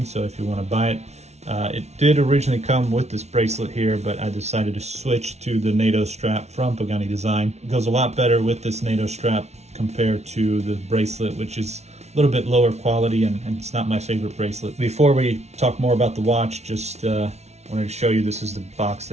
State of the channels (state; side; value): late; left; 0.32 ms